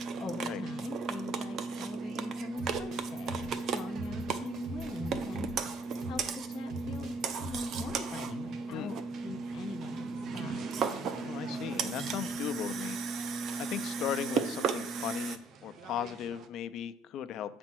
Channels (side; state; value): both; normal; correlation 0.64